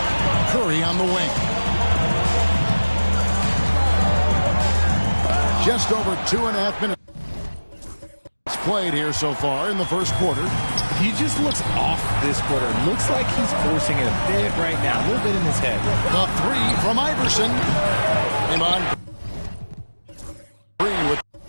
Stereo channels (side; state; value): both; inverted; correlation -1.00